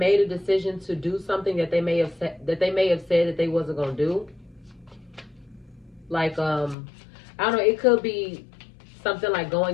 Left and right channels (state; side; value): drops out; right; at 6.8 s